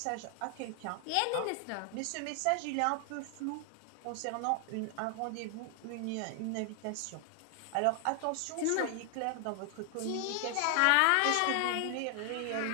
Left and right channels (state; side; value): different; both; correlation 0.00